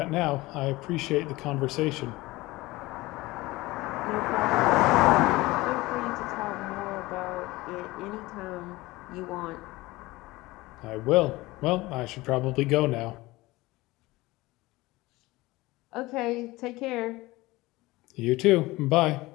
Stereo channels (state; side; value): quieter; right; 20.2 dB